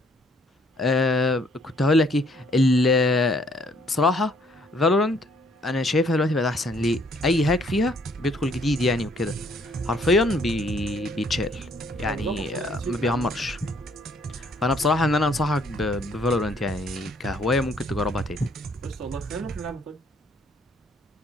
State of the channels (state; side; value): normal; both; correlation 0.64